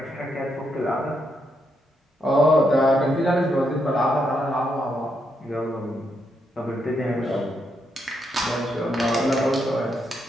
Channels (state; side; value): normal; both; correlation 0.79